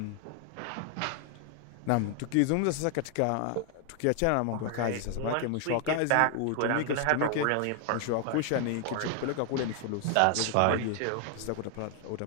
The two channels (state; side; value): different; both; correlation 0.00